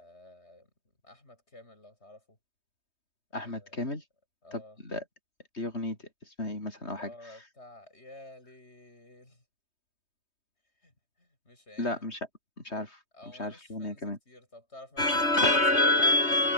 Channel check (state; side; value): late; right; 3.2 ms